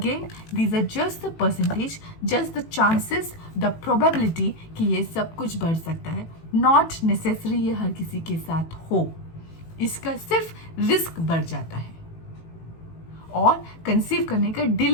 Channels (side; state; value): right; late; 18 ms